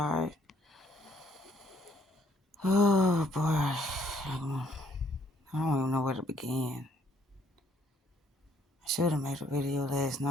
Oh boy. I don't even know where to begin. I should have made a video last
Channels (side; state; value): both; normal; correlation 0.65